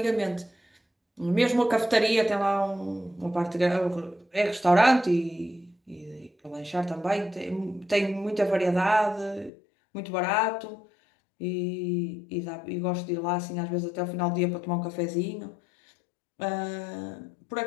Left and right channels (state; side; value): drops out; right; at 9.5 s